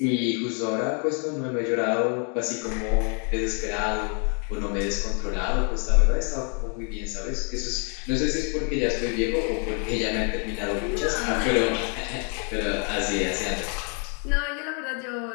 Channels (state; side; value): quieter; right; 39.1 dB